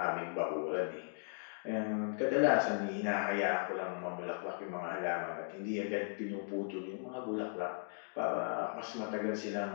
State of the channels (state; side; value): silent; right; digital silence